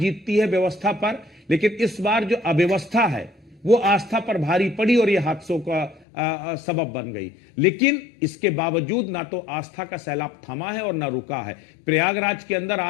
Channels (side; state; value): right; drops out; at 6.1 s